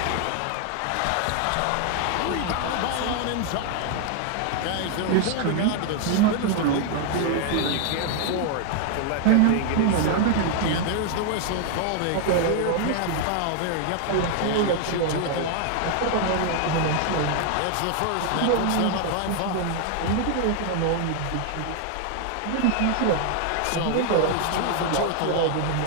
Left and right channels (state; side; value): different; both; correlation 0.00